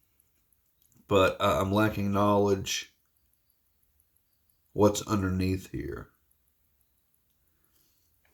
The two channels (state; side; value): identical; both; correlation 1.00